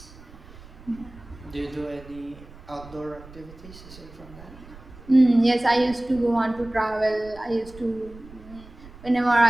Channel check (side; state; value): right; noise; rumble, 19 dB below the sound